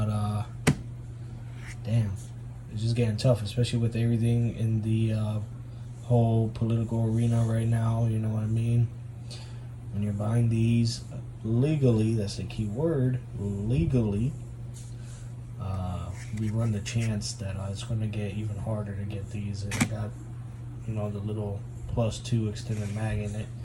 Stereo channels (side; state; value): both; identical; correlation 1.00